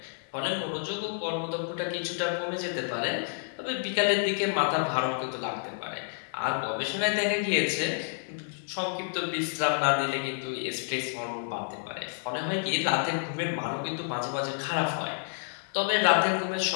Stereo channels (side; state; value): right; silent; digital silence